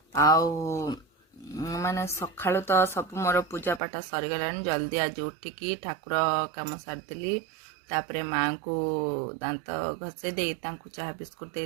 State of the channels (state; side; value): drops out; left; at 3.8 s